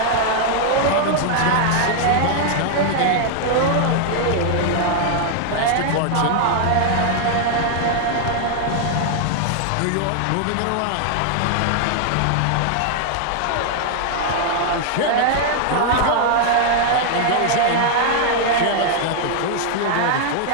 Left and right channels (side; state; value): both; different; correlation 0.00